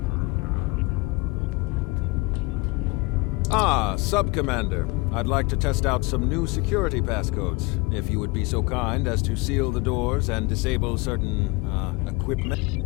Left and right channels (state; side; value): quieter; right; 25.2 dB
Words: Sub-Commander. I'd like to test out some new security passcodes, if you would be so kind as to seal the doors and disable certain, equipment.